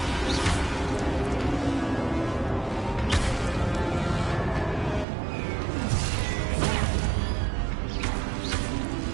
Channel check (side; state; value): left; drops out; at 5.1 s